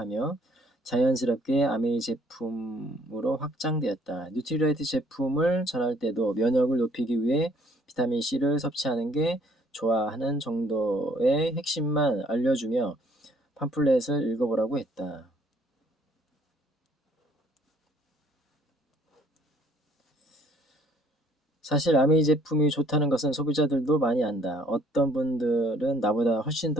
자연스럽게 아메이 제품으로 확장되었다. 뉴트리라이트 제품을 전할 때도 면역을 높이기 위해 비타민C를 섭취하는 게 좋아 하는 정도의 핵심만 알려주며 팜플렛을 읽어보라고 했다. 사실 아메이 제품이 좋다는 것은 소비자들도 많이 안다. 어떤 분들은 나보다 훨씬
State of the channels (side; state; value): both; normal; correlation 0.61